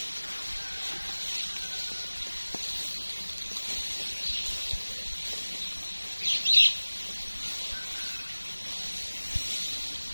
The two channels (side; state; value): both; inverted; correlation -1.00